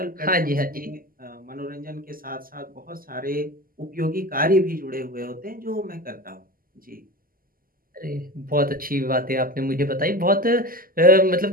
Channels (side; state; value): left; late; 0.42 ms